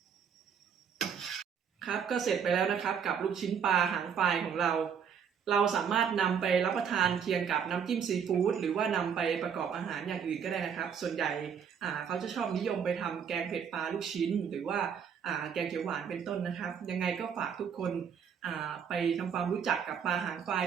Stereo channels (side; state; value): left; quieter; 7.4 dB